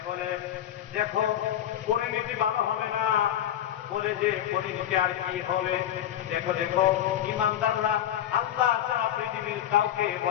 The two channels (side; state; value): right; quieter; 11.2 dB